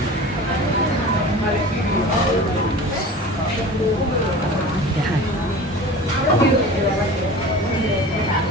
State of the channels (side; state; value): both; normal; correlation 0.37